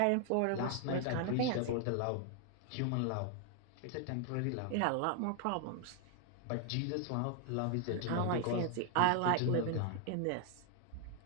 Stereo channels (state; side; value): different; both; correlation 0.00